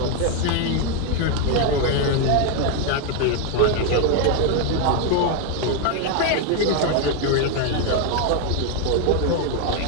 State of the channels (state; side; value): different; both; correlation 0.01